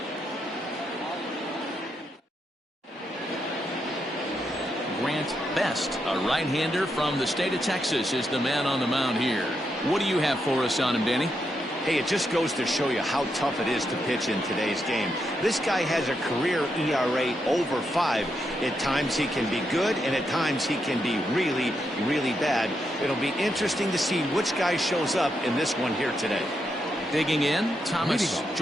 Grant Best, a right-hander from the state of Texas, is the man on the mound here. What do you have for us on him, Danny? Hey, it just goes to show you how tough it is to pitch in today's game. This guy has a career ERA over 5. At times he can be good, and at times he can be really, really bad. It'll be interesting to see which guy shows up in this one here today. Digging in, Thomas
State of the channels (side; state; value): both; normal; correlation 0.82